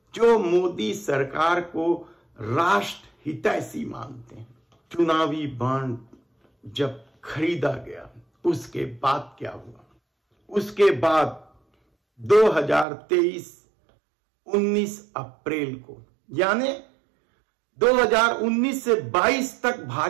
जो मोदी सरकार को राष्ट्र हितैषी मानते हैं। चुनावी बॉन्ड जब खरीदा गया उसके बाद क्या हुआ? उसके बाद 2023 19 अप्रैल को, यानी 2019 से 22 तक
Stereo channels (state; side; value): drops out; left; at 12.9 s